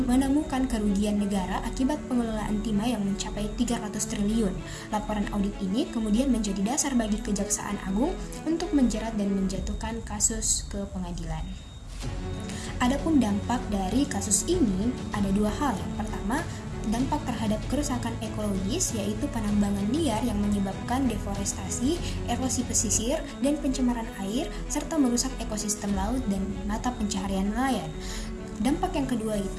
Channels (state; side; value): identical; both; correlation 1.00